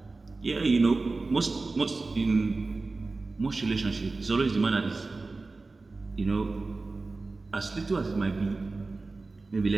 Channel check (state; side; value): quieter; left; 3.6 dB